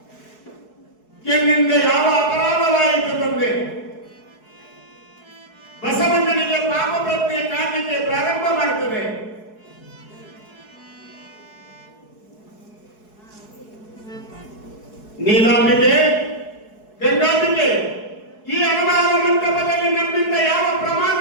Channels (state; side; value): late; right; 4.7 ms